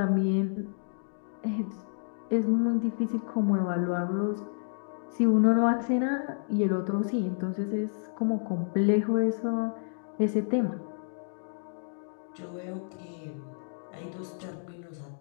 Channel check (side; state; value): right; silent; digital silence